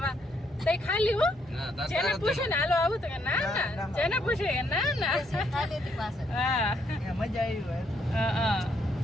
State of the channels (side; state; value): both; normal; correlation 0.73